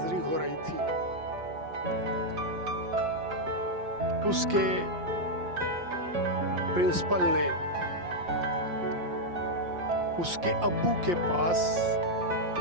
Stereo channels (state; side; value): late; left; 5.7 ms